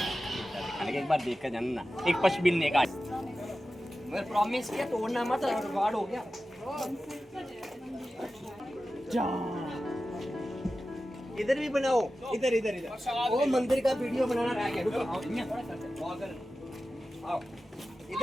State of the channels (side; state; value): both; normal; correlation 0.94